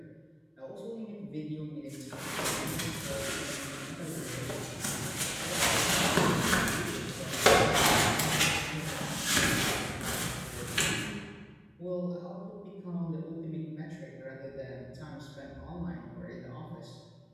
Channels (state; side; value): identical; both; correlation 1.00